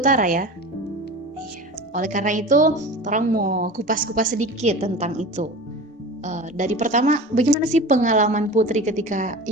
ya. Iya. Oleh karena itu, orang mau kupas-kupas sedikit tentang itu. Dari pertama, bagaimana sih pengalaman Putri ketika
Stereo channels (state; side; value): normal; both; correlation 0.34